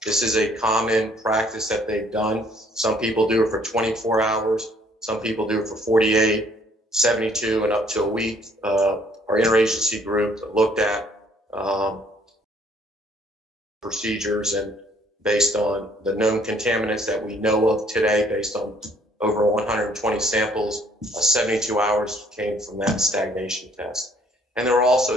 This is a common practice that they've done. Some people do it for 24 hours. Some people do it for 48, 72, and up to a week. Our interagency group looked at procedures, and based on the known contaminants that we know of today, based on over 120 samples, 72 hours came from that stagnation test. And we'll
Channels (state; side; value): normal; both; correlation 0.62